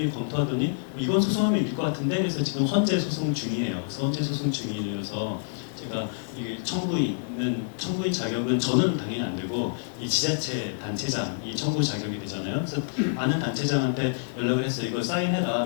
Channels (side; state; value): right; silent; digital silence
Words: 검토하더니 이건 소송하면 이길 것 같은데, 그래서 지금 헌재 소송 중이에요. 그래서 헌재 소송 중이어서 제가 이게 청구인 자격은 저는 당연히 안 되고 이 지자체 단체장이 청구 자격이 되잖아요. 그래서 아는 단체장한테 연락을 했어요. 이거 사인해라.